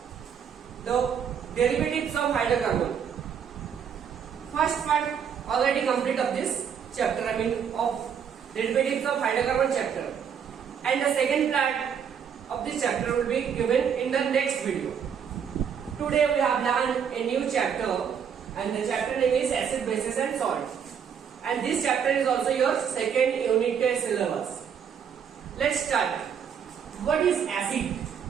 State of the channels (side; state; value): left; quieter; 7.7 dB